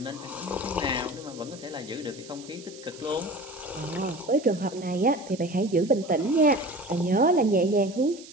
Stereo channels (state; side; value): noise; right; hiss, 18 dB below the sound